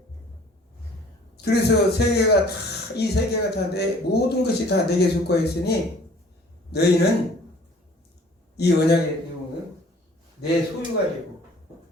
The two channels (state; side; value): normal; both; correlation 0.53